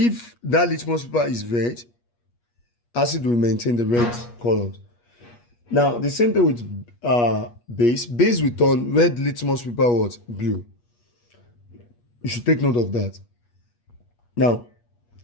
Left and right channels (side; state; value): right; late; 8.4 ms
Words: that litmus paper is red, acid will maintain the red color. Now, the same thing with base. Base will turn red litmus paper what? Blue. You should take note of that. Now,